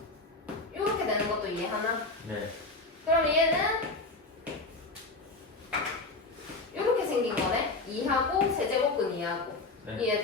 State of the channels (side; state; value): right; quieter; 3.3 dB